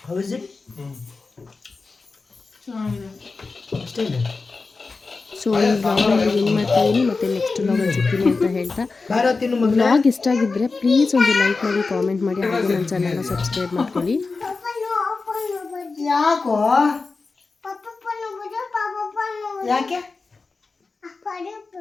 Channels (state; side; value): quieter; right; 4.1 dB